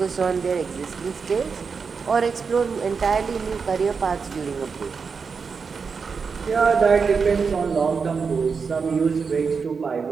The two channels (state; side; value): quieter; left; 5.4 dB